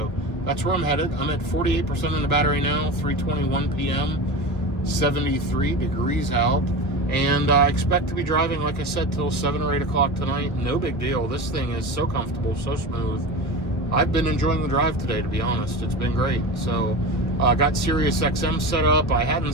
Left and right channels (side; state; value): right; late; 1.5 ms